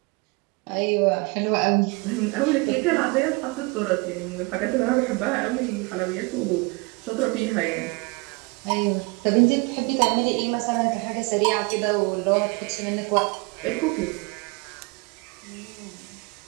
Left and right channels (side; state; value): left; quieter; 27.4 dB